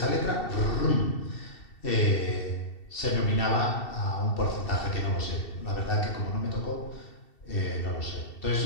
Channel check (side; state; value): right; late; 2.7 ms